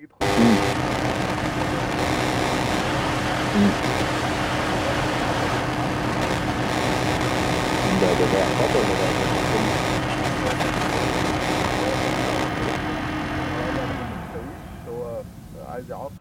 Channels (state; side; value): identical; both; correlation 1.00